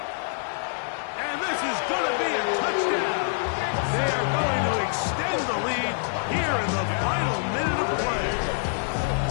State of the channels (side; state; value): right; silent; digital silence